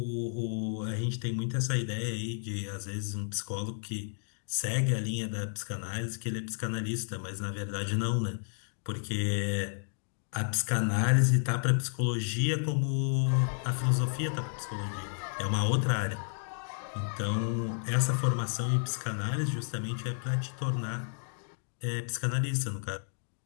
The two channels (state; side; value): silent; right; digital silence